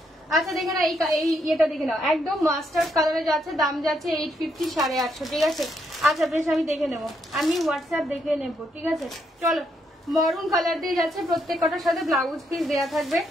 আচ্ছা দেখে না এই ইয়েটা দেখে নাও, একদম মাস্টার্ড কালারে যাচ্ছে, দাম যাচ্ছে 850 850, ঠিক আছে? আচ্ছা বেশ, আমি দেখে নেবো, আমি হোয়াটসঅ্যাপ দেখে নেবো, ঠিক আছে? চলো মরুন কালার দিয়ে যাচ্ছে, প্রত্যেকটার সাথে ব্লাউজ পিস দেওয়া থাকবে।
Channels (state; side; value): normal; both; correlation 0.76